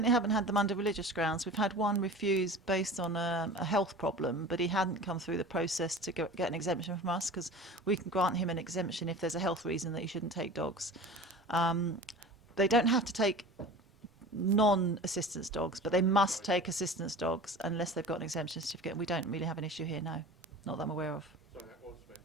haven't had them under religious grounds. We've had one refused based on a health problem, but he hadn't come through the process to get an exemption from us, because we can grant him an exemption if there's a health reason that he shouldn't take dogs. they don't have to take non-assistance dogs, but they must take assistance dogs unless they've got an exemption certificate. We don't really have an issue here, no. Not that I'm aware of. So that was meant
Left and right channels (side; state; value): both; normal; correlation 0.37